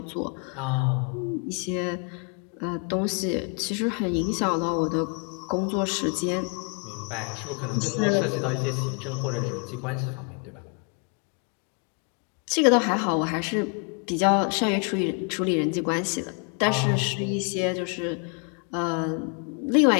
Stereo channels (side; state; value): right; quieter; 37.1 dB